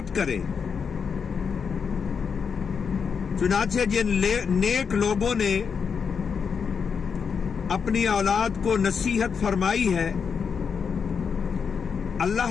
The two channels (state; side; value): quieter; right; 6.3 dB